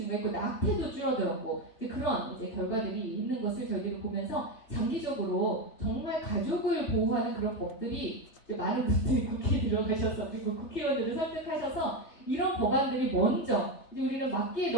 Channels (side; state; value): right; late; 3.2 ms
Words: 낙태도 줄어들었고 이제 그런 이제 결과들이 있는 것을 저희들이 보면서 장기적으로 정말 가족을 보호하는 그런 법들이 많은 분들이 국회에 들어가셔서 그리고 국회의원들을 설득하셔서 이런 법안들이 먼저 이제 우리는 막기에